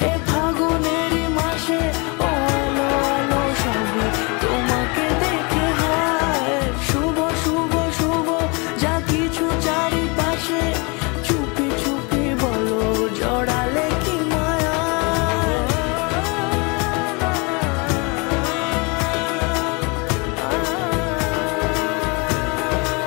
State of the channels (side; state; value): right; quieter; 30.3 dB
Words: এ ফাগুনেরই মাসে, ও আলো আলো সবে তোমাকে দেখে হয়। শুভ শুভ শুভ যা কিছু চারিপাশে, চুপি চুপি বলো জড়ালে কি মায়া।